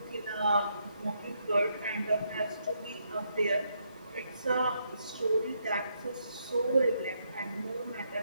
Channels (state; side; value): inverted; both; correlation -0.77